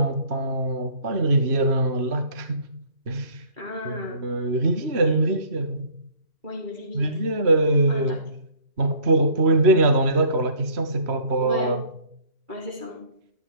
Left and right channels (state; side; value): late; left; 3.0 ms